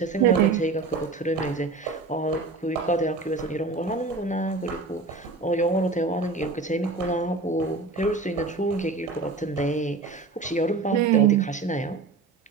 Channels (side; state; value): left; quieter; 3.9 dB